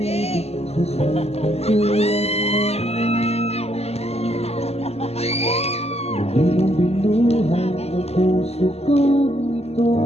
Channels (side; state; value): right; late; 0.30 ms